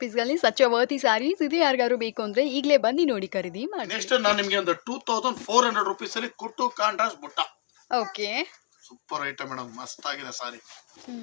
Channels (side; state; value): right; silent; digital silence